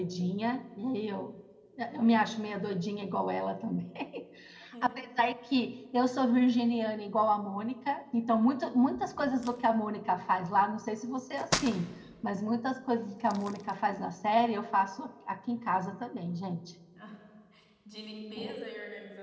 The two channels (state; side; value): identical; both; correlation 1.00